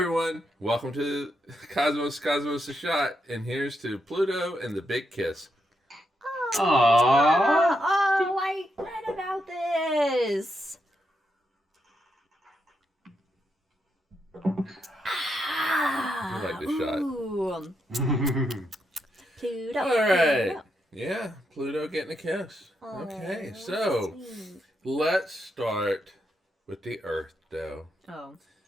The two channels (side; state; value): both; normal; correlation 0.82